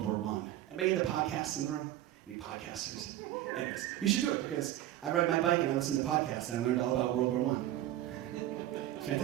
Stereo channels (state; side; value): quieter; left; 13.6 dB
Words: War I. Anybody into podcasts in the room? Any podcasters? Anyways, you should do it because I ride my bike and I listen to podcasts and I learned all about World War I. It's